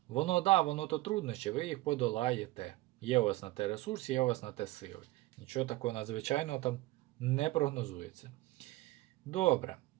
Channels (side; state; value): left; quieter; 18.7 dB